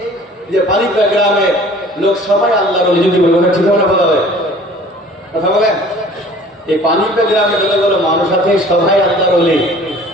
যে পানিপা গ্রামে লোক সবাই আল্লাহর ওলি, যদি বলবো ঠিক হবে না? বলা হয় কথা বলেন। এই পানিপা গ্রামে যতগুলো মানুষ আছে সবাই আল্লাহর ওলি,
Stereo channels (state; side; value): normal; both; correlation 0.49